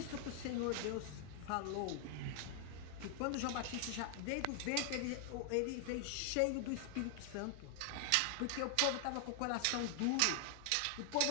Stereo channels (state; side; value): different; both; correlation 0.00